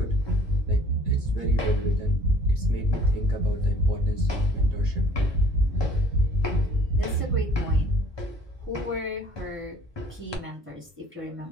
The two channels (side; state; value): both; normal; correlation 0.55